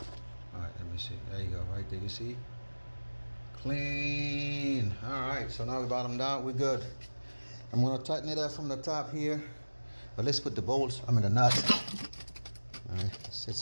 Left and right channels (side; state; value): both; inverted; correlation -1.00